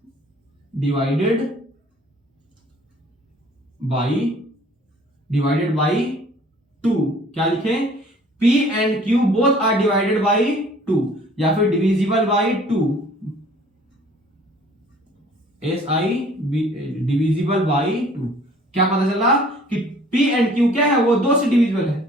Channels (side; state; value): both; normal; correlation 0.54